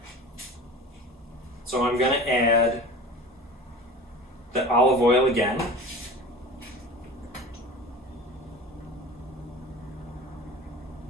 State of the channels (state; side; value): normal; both; correlation 0.36